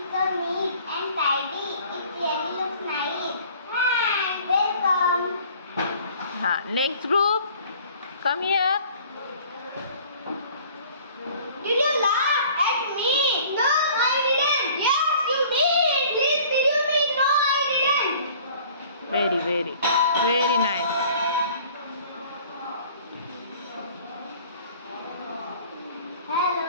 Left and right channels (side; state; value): both; inverted; correlation -0.51